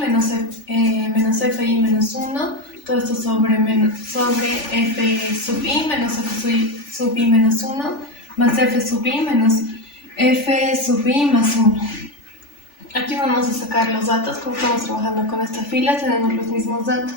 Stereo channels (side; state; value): right; late; 3.4 ms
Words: fi menos 1, todo esto sobre f sub i menos f sub i menos 1, más f sub i menos f sub i más 1. Aquí vamos a sacar los datos. Como estamos trabajando con esta fila, tenemos los mismos